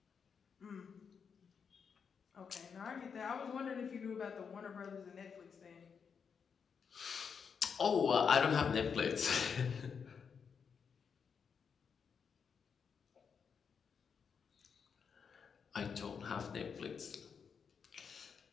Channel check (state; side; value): quieter; right; 6.4 dB